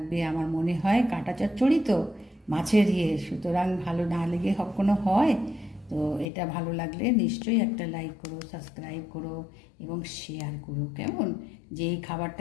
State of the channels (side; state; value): right; drops out; at 6.2 s